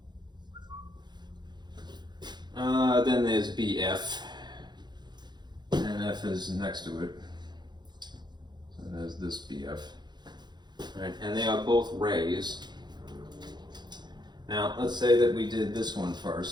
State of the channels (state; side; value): late; left; 0.21 ms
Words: Then there's BF, and F is next to it. So there's this BF. Right, and they are both rays. Now, let's say that we did this one